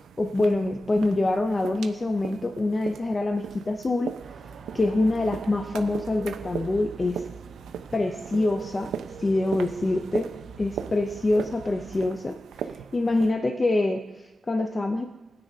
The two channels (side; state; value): both; normal; correlation 0.94